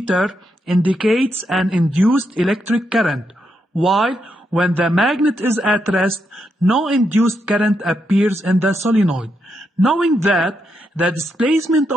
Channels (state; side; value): normal; both; correlation 0.81